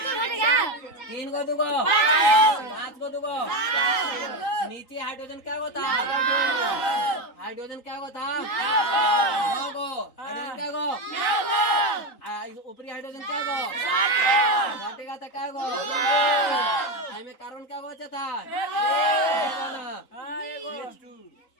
3 को 2 को 5 को 2 को नीचे हाइड्रोजन क्या होता, हाइड्रोजन क्या होता 9 को, हाइड्रोजन क्या गो, ऊपरी हाइड्रोजन क्या गो घटेगा था क्या गो, में कार्बन क्या गो था।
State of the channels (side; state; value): right; late; 3.8 ms